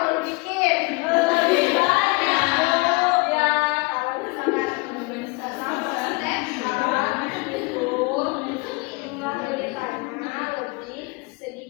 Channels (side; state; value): right; quieter; 26.6 dB